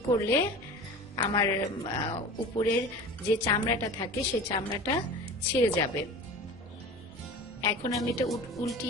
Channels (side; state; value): both; normal; correlation 0.36